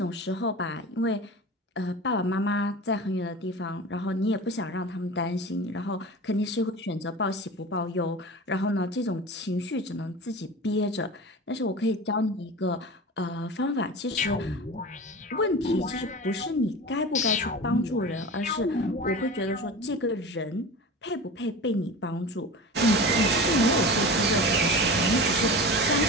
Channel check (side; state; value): both; normal; correlation 0.32